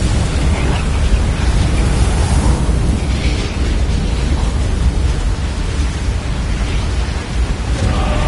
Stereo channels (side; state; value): both; identical; correlation 1.00